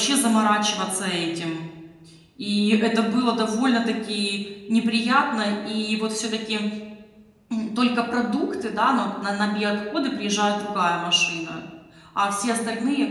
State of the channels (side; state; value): both; identical; correlation 1.00